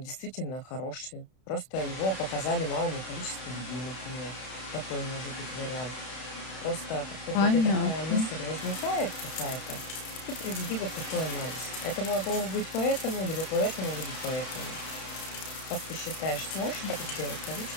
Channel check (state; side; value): late; right; 31 ms